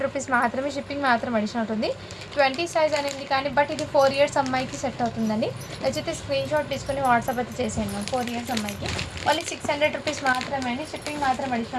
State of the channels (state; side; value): identical; both; correlation 1.00